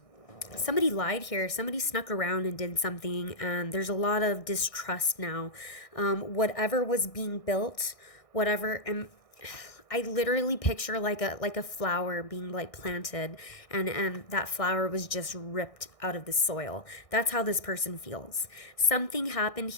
lied here. Somebody snuck around and did something. And there's a lot of distrust now. Whatever was being built, whatever, and I literally picture like a flower being like planted, and that flower was just ripped out of the soil. That's how this person feels. Something happened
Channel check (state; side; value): late; right; 1.6 ms